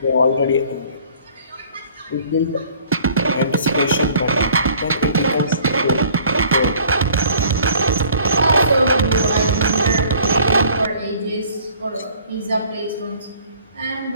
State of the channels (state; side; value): inverted; both; correlation -0.54